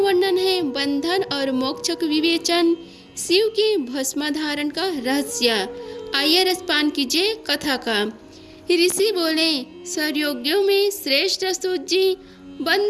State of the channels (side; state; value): both; identical; correlation 1.00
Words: है बंधन और मोक्ष का विवेचन, शिव के भस्म धारण का रहस्य। आइए रसपान कीजिए कथा का। ऋषि बोले, सर्वयोगियों में श्रेष्ठ सूत जी,